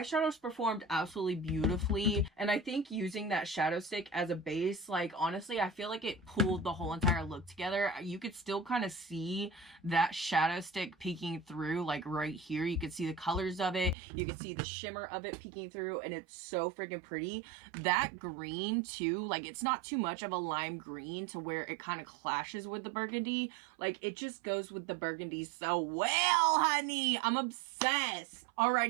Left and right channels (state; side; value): drops out; left; at 14.0 s